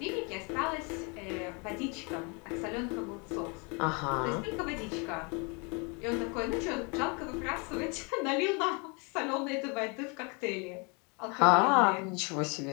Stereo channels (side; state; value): right; quieter; 32.1 dB